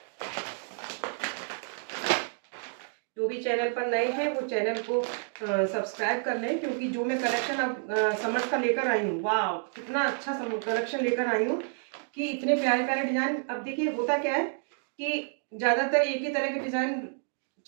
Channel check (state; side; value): silent; left; 58 dB below the other